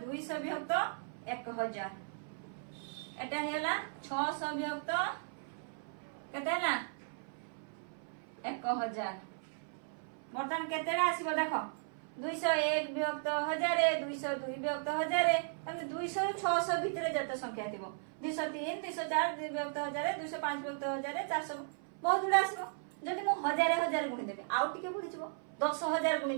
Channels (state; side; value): silent; left; 54 dB below the other